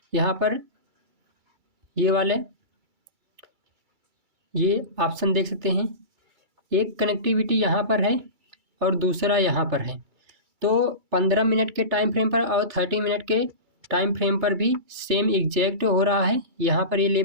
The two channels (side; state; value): left; late; 2.3 ms